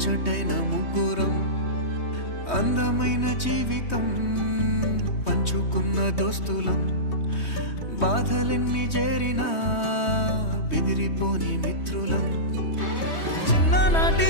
ముగ్గురం అందమైన జీవితం పంచుకున్న దోస్తులం బాధలెన్ని చేరినా బెదిరిపోని మిత్రులం చిన్ననాటి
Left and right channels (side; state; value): right; late; 3.2 ms